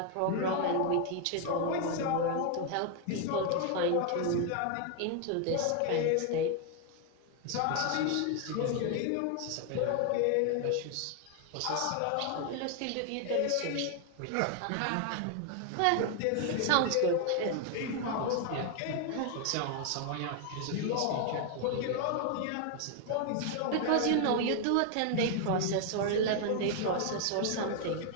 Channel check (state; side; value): different; both; correlation 0.00